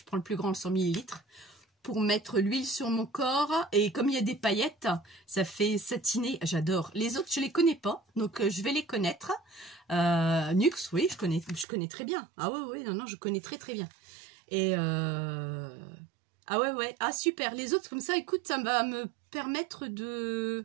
prends le plus grand, le 100 ml, pour mettre l'huile sur mon corps. Et comme il y a des paillettes, ça fait satiner. J'adore. Les autres, je les connais pas, donc je vais les connaître. Nux, oui, je connais très bien. Ah oui, non, je connais très bien. Et ah ouais, ah super. Les autres, comme ça, écoute, ça va me permettre de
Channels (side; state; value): left; drops out; at 11.7 s